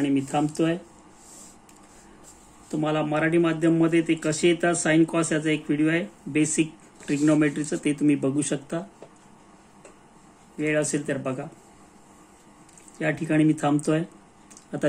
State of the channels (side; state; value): both; identical; correlation 1.00